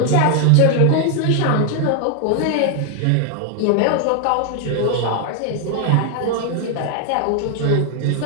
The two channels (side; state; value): both; different; correlation 0.00